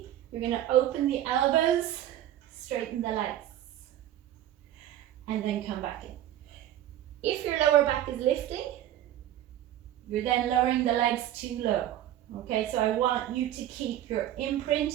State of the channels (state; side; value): quieter; left; 12.3 dB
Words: You're going to open the elbows, straighten the legs, and then come back in. If your lower back is lifting, you're then lowering the legs too low. Okay, so I want you to keep your imprint